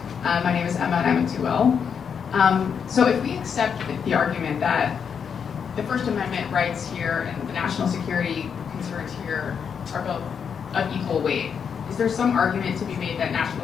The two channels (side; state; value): right; quieter; 7.0 dB